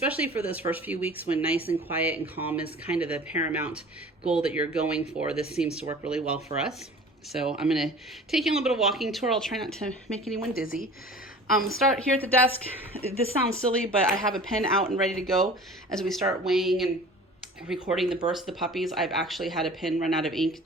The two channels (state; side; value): normal; both; correlation 0.43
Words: for those first few weeks when nice and quiet and calm is kind of the paramount goal that you're going for, this seems to work really well for us. So I'm going to take you on a little bit of walking tour. I'll try not to make anyone dizzy. Start here at the desk. This sounds silly, but I have a pen out and ready to go as we start weighing and recording the births of the puppies. I've actually had a pen run out of ink